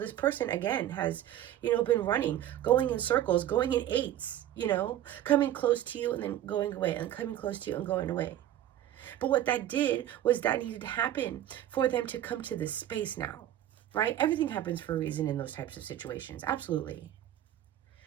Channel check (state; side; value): quieter; left; 12.2 dB